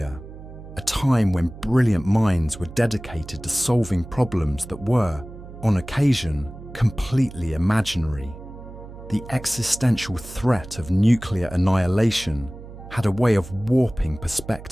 a time when brilliant minds were dedicated to solving problems that were, on occasion, completely imaginary. The existential threat of nuclear annihilation had a way of warping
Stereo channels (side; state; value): right; noise; hum, 15 dB below the sound